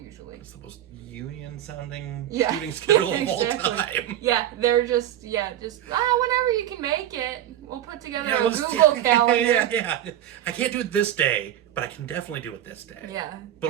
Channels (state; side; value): quieter; left; 11.8 dB